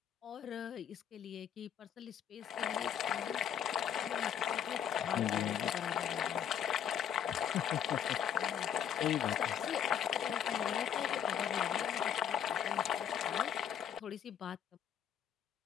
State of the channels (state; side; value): quieter; right; 9.0 dB